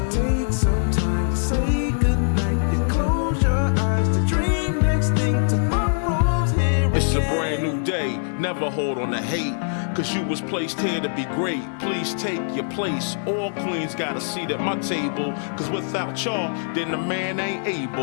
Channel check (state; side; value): silent; right; digital silence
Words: takes some time to say goodnight. You close your eyes to dream next thing tomorrow's here. It's a brand new day, never hold on to hate. Cause you was placed here to be great. Please take your place. All queens got a seat at my table. Cause without y'all, then the man ain't